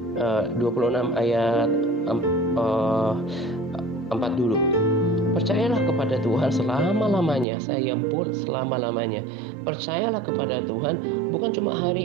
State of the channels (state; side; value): drops out; left; at 7.5 s